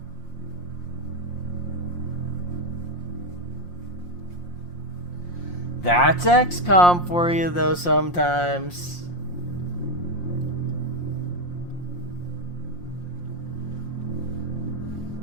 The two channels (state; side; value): late; right; 5.7 ms